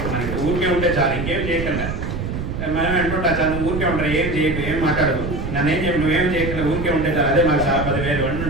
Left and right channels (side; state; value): right; noise; rumble, 4 dB below the sound